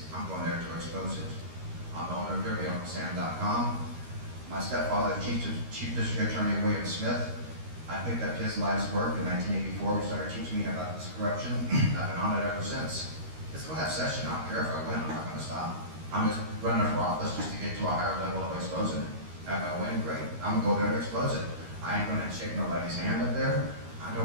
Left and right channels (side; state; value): left; late; 13 ms